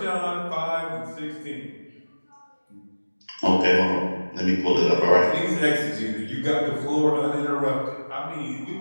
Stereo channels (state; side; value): inverted; both; correlation -1.00